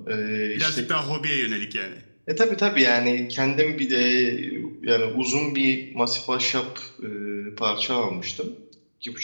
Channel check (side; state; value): both; inverted; correlation -1.00